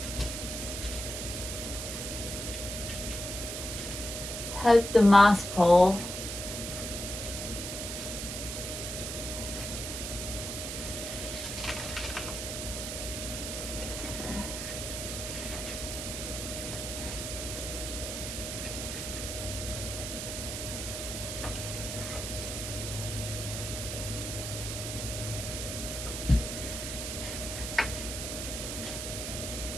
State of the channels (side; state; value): right; noise; hiss, 5 dB below the sound